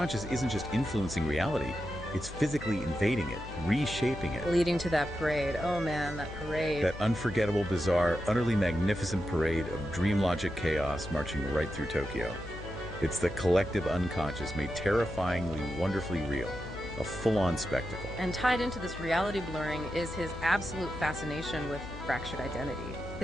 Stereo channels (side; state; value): left; noise; hum, 12 dB below the sound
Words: isn't just influencing reality, it's physically invading it, reshaping it. Leading to that parade. Oh man, that parade. That unforgettable, bizarre, utterly magnificent parade of dream logic chaos marching right through Tokyo. It's the collective unconscious made terrifyingly, wonderfully real. A full-on spectacle. And tied into this reality blurring is his absolute fascination with fractured identity.